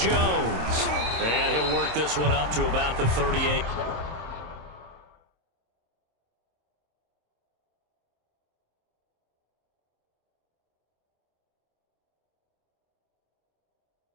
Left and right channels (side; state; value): left; late; 26 ms